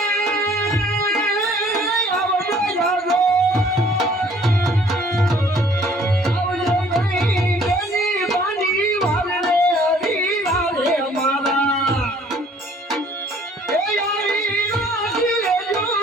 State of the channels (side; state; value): both; normal; correlation 0.57